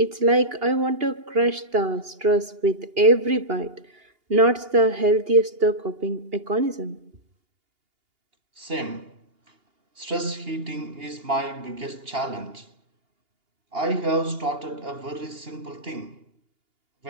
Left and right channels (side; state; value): left; late; 2.8 ms